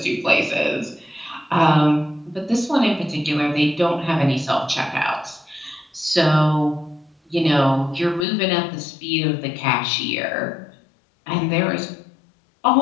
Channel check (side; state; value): right; drops out; at 8.2 s